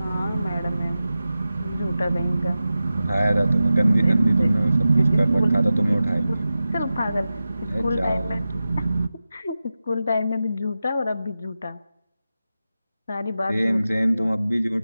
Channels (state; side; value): inverted; both; correlation -0.93